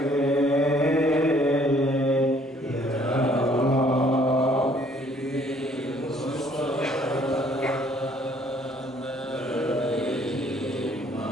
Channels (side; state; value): both; normal; correlation 0.61